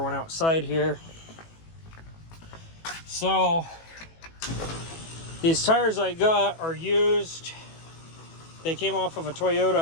outside here. So these tires I got are used. They came off of a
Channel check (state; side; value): late; right; 18 ms